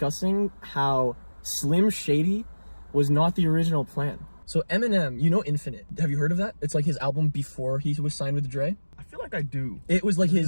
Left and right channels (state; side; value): inverted; both; correlation -1.00